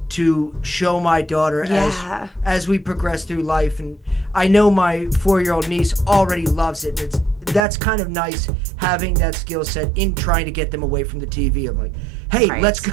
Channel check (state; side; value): drops out; left; at 7.6 s